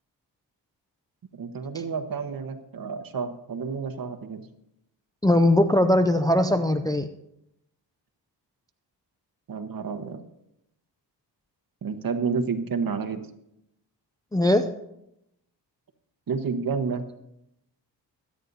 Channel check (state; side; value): normal; both; correlation 0.62